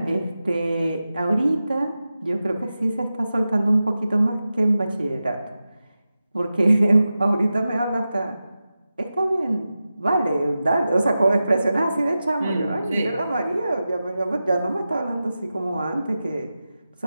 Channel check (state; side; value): inverted; both; correlation -0.93